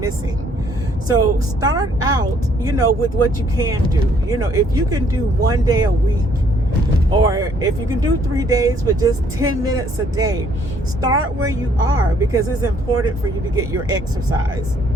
So start out, you know, with what you can do. You know, if you can do 1 day a week, or if you can do 3 days with just 10 minutes a day, start where you are, because it's important for you to get your exercise.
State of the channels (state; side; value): normal; both; correlation 0.64